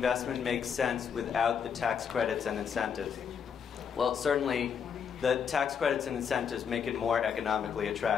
make sense without the tax credits and incentives? Well, certainly the tax credits and incentives make it more economically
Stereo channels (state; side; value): quieter; right; 7.2 dB